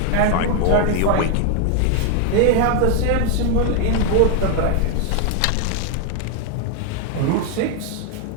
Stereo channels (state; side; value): different; both; correlation 0.00